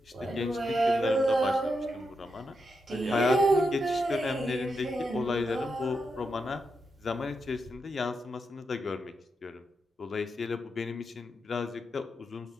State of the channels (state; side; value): normal; both; correlation 0.85